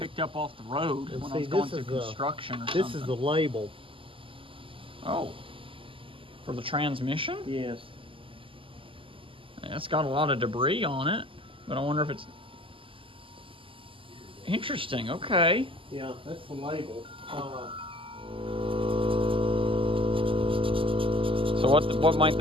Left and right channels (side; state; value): left; late; 0.25 ms